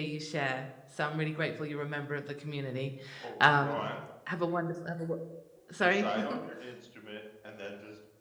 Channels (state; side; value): identical; both; correlation 1.00